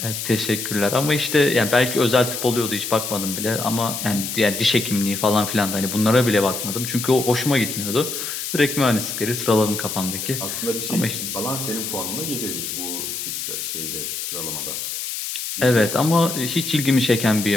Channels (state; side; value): noise; left; hiss, 5 dB below the sound